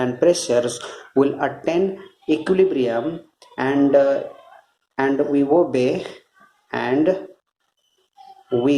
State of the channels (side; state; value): both; identical; correlation 1.00